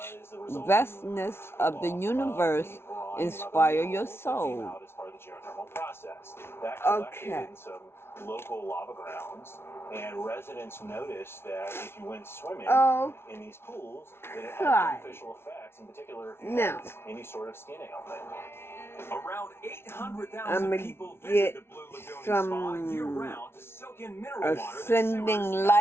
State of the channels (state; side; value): late; right; 0.12 ms